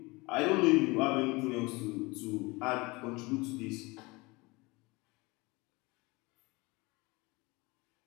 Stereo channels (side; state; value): right; quieter; 24.2 dB